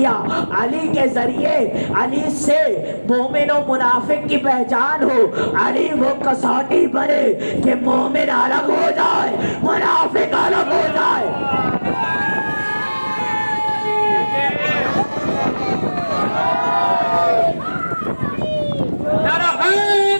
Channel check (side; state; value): both; inverted; correlation -1.00